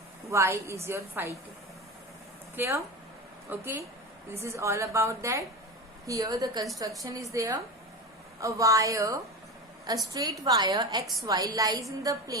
Y is your phi 2. Clear? Okay, this is all about that. Here the construction is there. A wire, a straight wire XY lies in the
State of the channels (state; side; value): normal; both; correlation 0.25